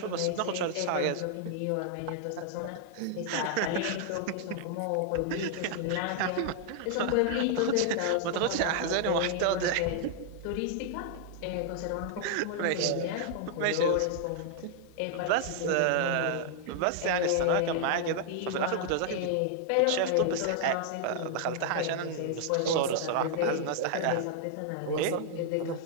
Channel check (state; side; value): different; both; correlation -0.01